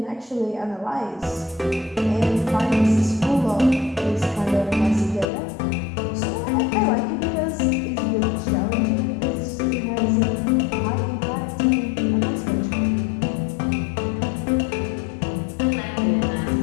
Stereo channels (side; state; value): right; drops out; at 5.2 s